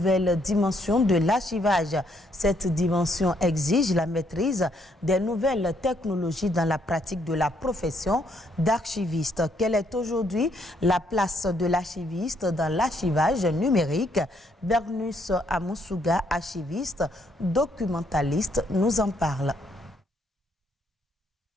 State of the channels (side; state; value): both; normal; correlation 0.71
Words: dimension de l'archivage. Cette dimension exige la maîtrise des nouvelles technologies dans la pratique de la profession d'archiviste. Quelle est aujourd'hui la place de l'archiviste dans l'archivage numérique? Bernus Amoussouga, archiviste, documentaliste, nous en parle.